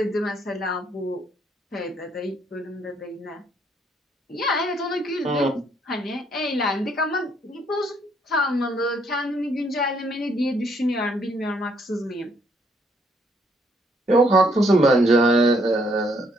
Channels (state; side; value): normal; both; correlation 0.69